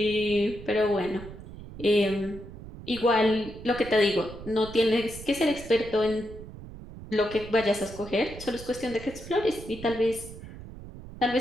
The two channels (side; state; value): right; noise; rumble, 14 dB below the sound